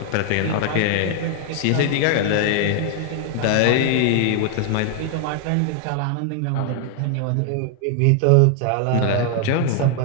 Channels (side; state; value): both; different; correlation 0.00